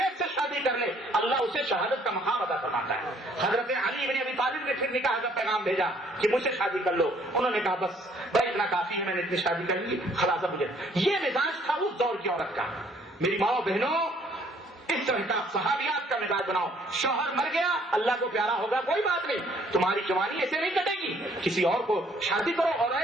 سے شادی کر لے, اللہ اسے شہادت کا مقام عطا فرماتا ہے. حضرت علی بن ابی طالب نے پھر نکاح کا پیغام بھیجا کہ مجھ سے شادی کر لو. انہوں نے کہا بس بھائی اتنا کافی ہے, میں نے اتنی شادی کر لی, خلاصہ مجھے. یہ مزاج تھا اس دور کی عورت کا. میری ماں بہنوں, اس طرح کا صحابیات کا مزاج بناؤ. شوہر مر گیا, اللہ کو پیارا ہوگا, کوئی بات نہیں, تمہاری جوانی ایسے نہیں کٹے گی, کسی اور کو شادی کرو. اور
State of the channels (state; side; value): normal; both; correlation 0.62